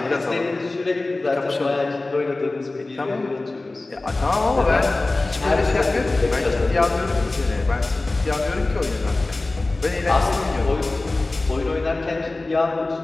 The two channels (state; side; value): quieter; right; 3.1 dB